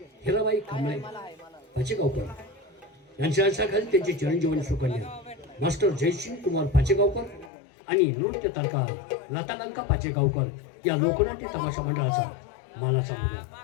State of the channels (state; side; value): drops out; right; at 7.5 s